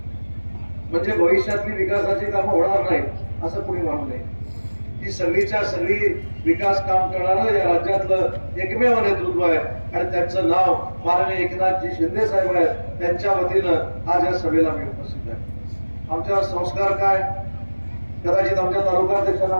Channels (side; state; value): both; inverted; correlation -1.00